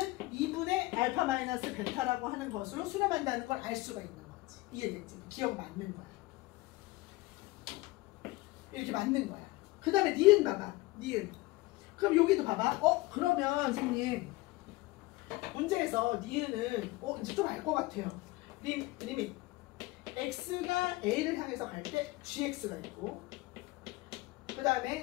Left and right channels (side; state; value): right; quieter; 20.6 dB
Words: 2분의 알파 마이너스 베타라고 하는 것으로 수렴한다는 걸 알 수가 있는 거지. 이해됐지? 기억 맞는 거야. 이렇게 맞는 거야. 그 다음에 니은 봐봐. 니은. 그럼 여기도 봐봐. 그러면 선생님 문제에서 니은은 이제 좀 알 것 같아요. 리밋 x가 a를 향해서 갈 때 gx가 있고 그 그